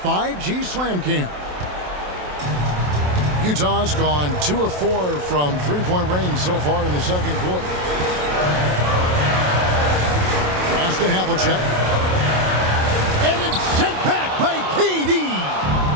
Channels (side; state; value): left; late; 27 ms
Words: Slam Cam. Utah's gone 2 of 4 from three-point range so far in the second quarter. Pass to Havlicek. And it's sent back by KD.